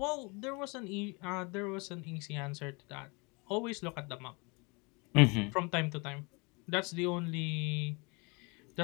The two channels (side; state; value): right; quieter; 29.7 dB